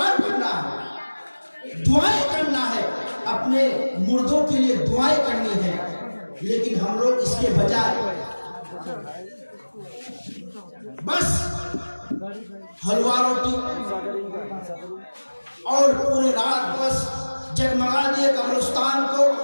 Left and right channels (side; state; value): both; inverted; correlation -1.00